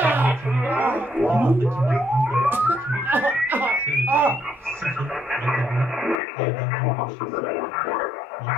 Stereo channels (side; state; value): right; drops out; at 6.2 s